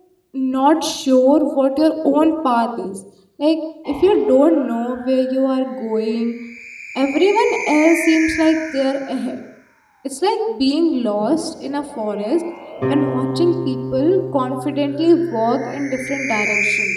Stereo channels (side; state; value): both; identical; correlation 1.00